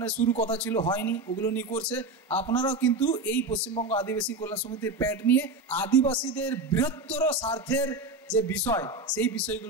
শুরু কথা ছিল, হয়নি, ওগুলো নিয়ে করছে। আপনারাও কিন্তু এই পশ্চিমবঙ্গ আদিবাসী কল্যাণ সমিতির প্যাড নিয়ে আদিবাসীদের বৃহত্তর স্বার্থের যে বিষয়, সেই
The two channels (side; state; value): left; quieter; 3.2 dB